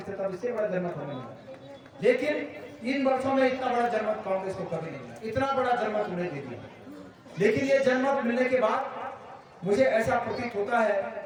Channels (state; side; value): identical; both; correlation 1.00